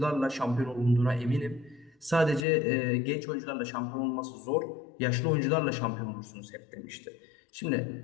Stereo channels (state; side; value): drops out; right; at 2.5 s